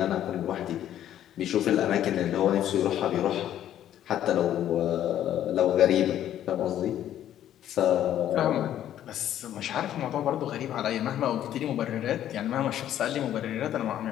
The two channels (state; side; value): quieter; right; 11.4 dB